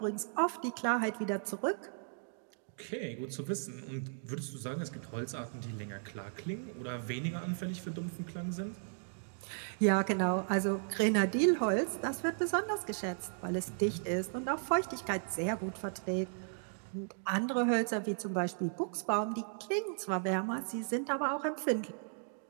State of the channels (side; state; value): left; silent; digital silence